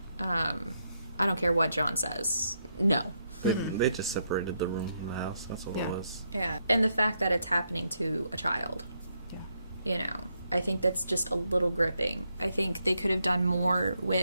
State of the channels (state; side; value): inverted; both; correlation -0.79